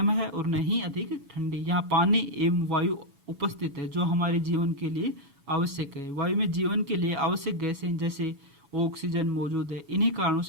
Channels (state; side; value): late; left; 7.1 ms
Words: है और न ही अधिक ठंडी। यहाँ पानी एवं वायु उपस्थित है, जो हमारे जीवन के लिए आवश्यक है। वायु में जीवन के लिए आवश्यक गैसें जैसे ऑक्सीजन मौजूद है। इन्हीं कारणों